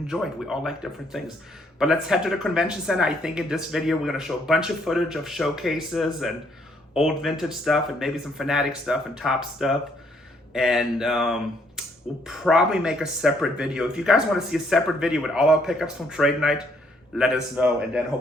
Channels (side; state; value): both; normal; correlation 0.68